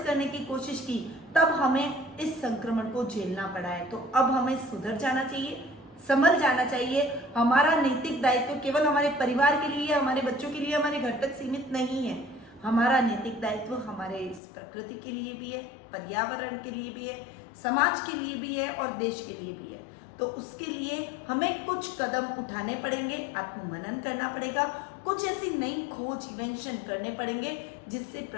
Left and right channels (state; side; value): drops out; right; at 14.4 s